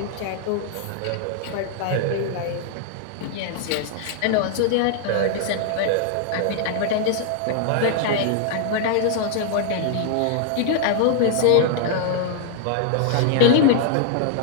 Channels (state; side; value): different; both; correlation -0.01